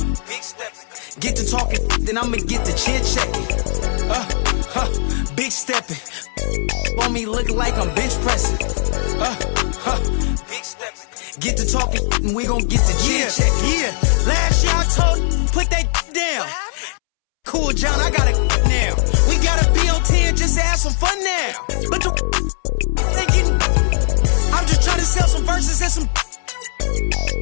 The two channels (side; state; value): right; silent; 67 dB below the other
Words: stepping. Get to talking, then I'ma get to chin checking. Big stepping. For me, look like I'm bench pressing. Big stepping. Get to talking, and we gon' get to chin checking. Yeah, last year I told put that down. Cool, John, I got it now. We gotta be on 10 just to have some fun now. But the they getting, I'm just trying to sell some verses and some.